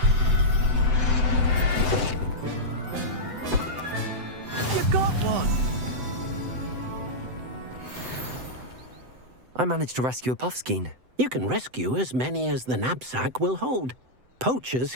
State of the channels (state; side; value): late; left; 7.9 ms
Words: I managed to rescue a puffskein. You can rescue as many as the knapsack will hold. Poachers